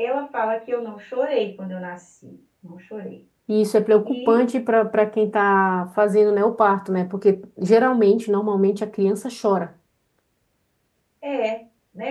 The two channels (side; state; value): both; identical; correlation 1.00